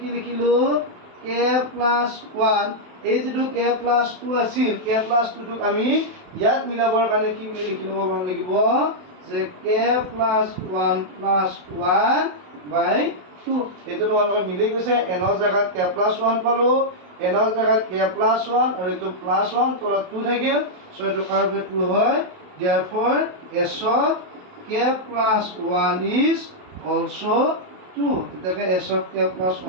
লিখিলো k plus 1 এই যেটো k plus 2 আছিল k plus 2 টোক আমি ইয়াত মিলাবৰ কাৰণে কি বুলি লিখি লব লাগিব যে k plus 1 plus 1 by 2 এটো তোমালোকৰ মিলি গৈছে n ৰ জায়গাত k plus 1 পালো n ৰ জায়গাত k plus 1 আৰু এটো plus 1 তলত 2 থাকিল সো এটো কাৰবে 2 হয় therefore s of k plus 1 is also 2 এটাকে s of k plus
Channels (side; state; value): left; late; 27 ms